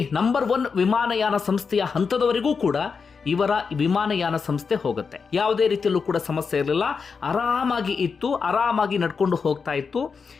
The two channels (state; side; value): quieter; right; 5.4 dB